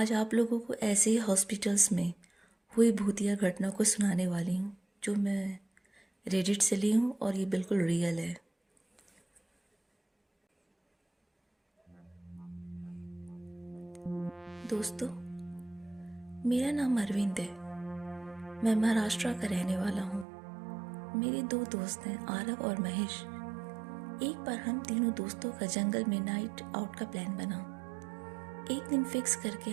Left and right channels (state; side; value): drops out; left; at 20.2 s